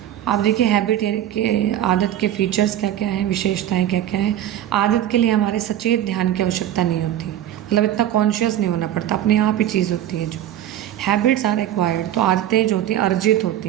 आप देखिए हैबिट के आदत के फीचर्स क्या क्या हैं, विशेषताएं क्या क्या हैं। आदत के लिए हमारे सचेत ध्यान की आवश्यकता नहीं होती, मतलब इतना कॉन्शियस नहीं होना पड़ता, अपने आप ही चीज़ होती है जो। हैबिट्स आर एक्वायर्ड, तो आदतें जो होती हैं अर्जित होती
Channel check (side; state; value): left; quieter; 11.8 dB